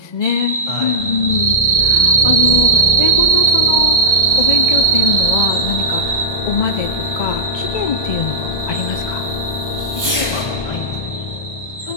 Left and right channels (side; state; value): right; late; 1.2 ms